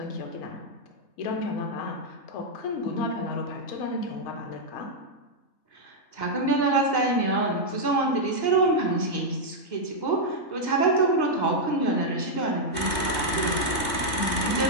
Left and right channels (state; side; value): late; right; 3.2 ms